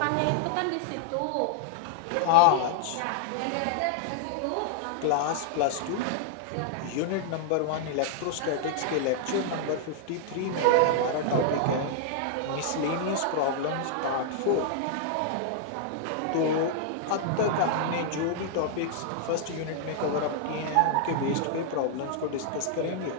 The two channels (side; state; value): both; different; correlation -0.01